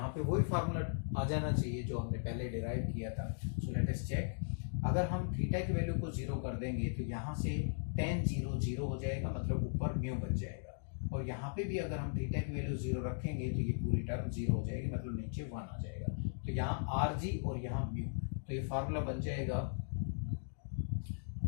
पे वही फार्मूला आ जाना चाहिए जो हमने पहले डिराइव किया था। So let us check. अगर हम थीटा की वैल्यू को जीरो कर देंगे तो यहाँ से tan जीरो जीरो हो जाएगा, मतलब ऊपर म्यू बच जाएगा। और यहाँ पे भी अगर हम थीटा की वैल्यू जीरो रखेंगे तो ये पूरी टर्म जीरो हो जाएगी, मतलब नीचे 1 आ जाएगा। तो यहाँ RG और यहाँ म्यू, तो ये फार्मूला बन जाएगा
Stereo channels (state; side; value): silent; right; digital silence